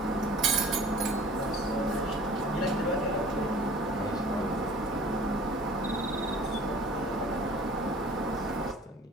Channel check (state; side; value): normal; both; correlation 0.47